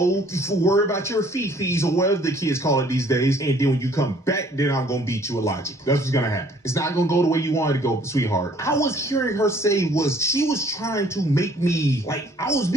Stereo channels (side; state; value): both; normal; correlation 0.59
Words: worry about your fees or whatever the kids call it these days. And then when you come back, then I'm going to beat you with logic. That's what's going to happen. It's not going to go the way you wanted to go, sweetheart. I was hearing her say she was trying to make me, like, I was